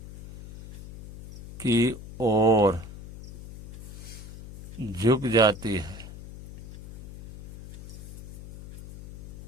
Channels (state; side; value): noise; left; hum, 12 dB below the sound